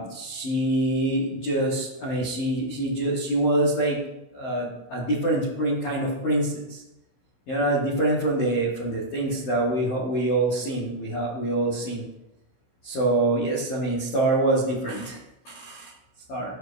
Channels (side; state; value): right; late; 15 ms